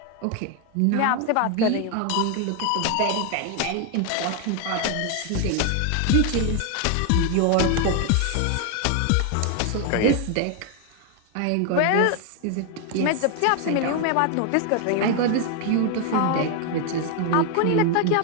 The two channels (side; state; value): both; different; correlation 0.01